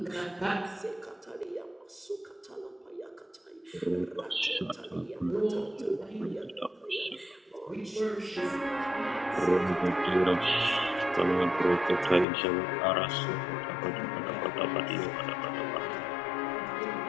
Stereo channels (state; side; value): drops out; right; at 12.2 s